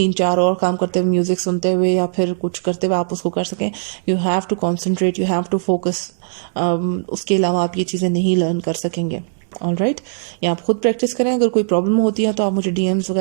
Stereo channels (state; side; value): silent; left; digital silence